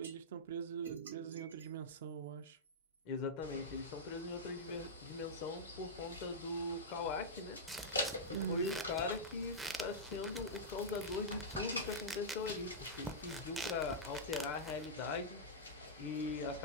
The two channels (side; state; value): both; normal; correlation -0.10